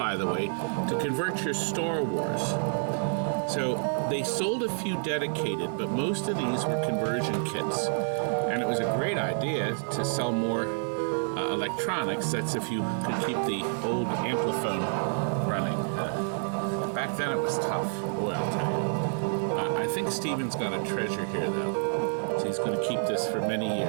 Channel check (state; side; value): silent; left; 59 dB below the other